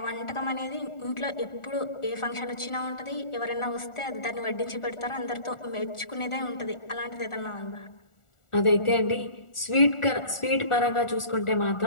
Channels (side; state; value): right; late; 1.4 ms